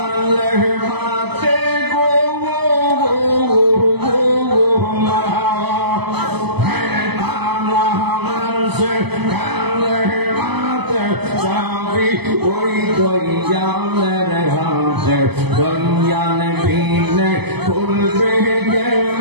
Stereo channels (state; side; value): late; left; 0.98 ms